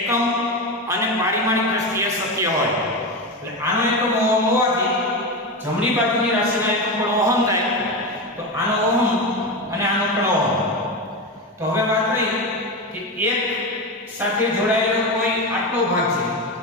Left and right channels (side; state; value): both; normal; correlation 0.18